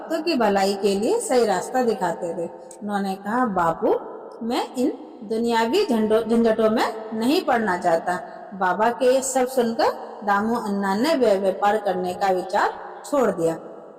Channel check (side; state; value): both; identical; correlation 1.00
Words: की भलाई के लिए सही रास्ता दिखाते थे। उन्होंने कहा, बापू, मैं इन दुनियावी झंझटों में नहीं पड़ना चाहता। बाबा के ये सब सुनकर दामू अन्ना ने व्यापार करने का विचार छोड़ दिया।